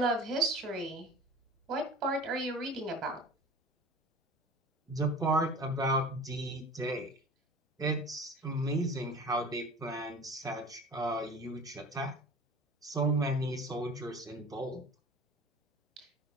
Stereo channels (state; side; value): normal; both; correlation 0.40